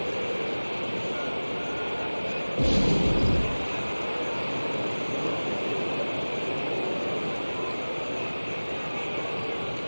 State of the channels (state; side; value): inverted; both; correlation -1.00